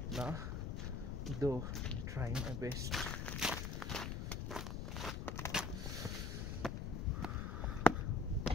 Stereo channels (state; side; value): noise; left; rumble, 3 dB below the sound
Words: না, though I'm trying my best.